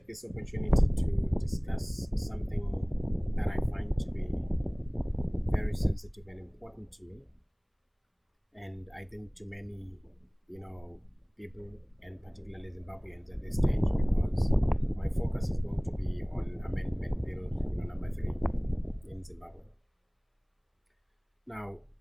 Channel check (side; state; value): both; identical; correlation 1.00